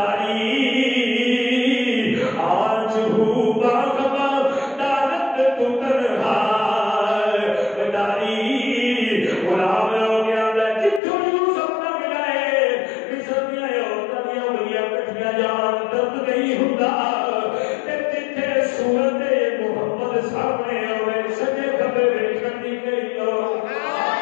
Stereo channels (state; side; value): drops out; right; at 11.0 s